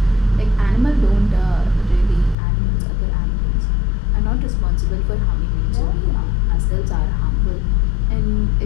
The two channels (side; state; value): right; drops out; at 2.4 s